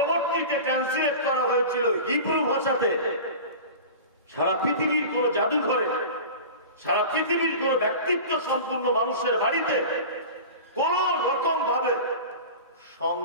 ট্রান্সলেট করা হয়েছিল হিব্রু ভাষাতে। সারা পৃথিবীর কোন জাদুঘরে, সারা পৃথিবীর কোন ব্যক্তিত্ব সম্পূর্ণ মানুষের বাড়িতে কোন রকম ভাবে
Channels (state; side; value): inverted; both; correlation -0.34